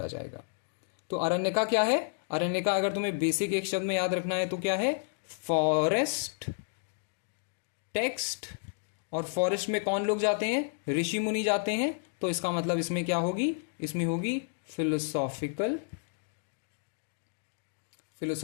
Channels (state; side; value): silent; right; digital silence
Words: जाएगा। तो अरण्यका क्या है? अरण्यका अगर तुम्हें बेसिक एक शब्द में याद रखना है तो क्या है? Forest text. और फॉरेस्ट में कौन लोग जाते हैं? ऋषि मुनि जाते हैं। तो इसका मतलब इसमें क्या होगी? इसमें होगी फिलोसॉफिकल